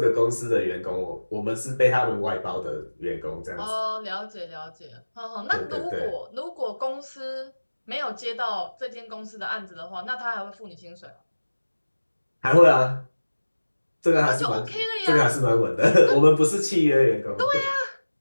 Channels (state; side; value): inverted; both; correlation -1.00